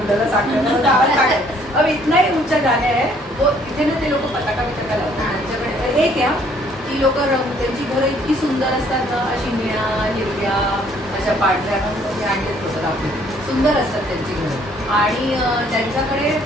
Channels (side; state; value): both; normal; correlation 0.62